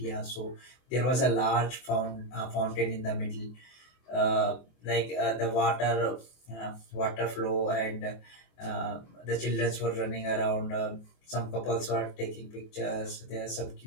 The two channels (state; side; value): late; right; 24 ms